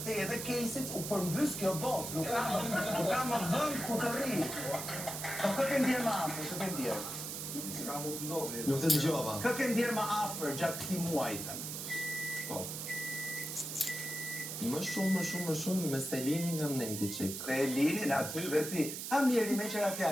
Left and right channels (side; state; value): right; noise; hiss, 6 dB below the sound